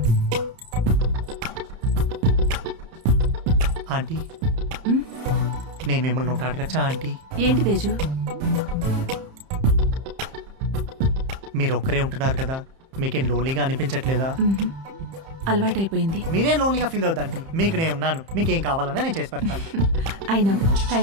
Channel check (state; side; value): late; left; 30 ms